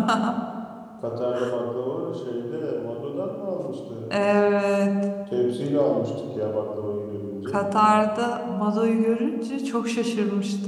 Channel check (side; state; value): both; identical; correlation 1.00